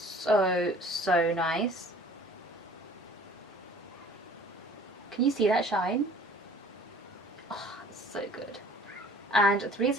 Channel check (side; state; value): both; normal; correlation 0.50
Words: nice. Can you see that shine? Oh, it's so good. And